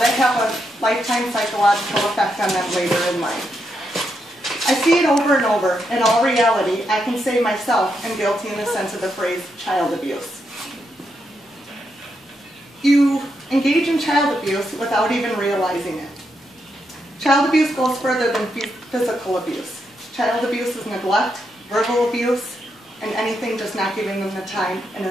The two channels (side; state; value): both; normal; correlation 0.82